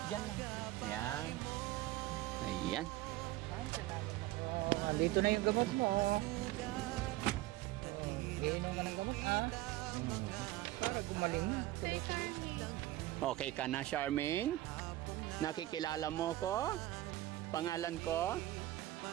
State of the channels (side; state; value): left; quieter; 16.3 dB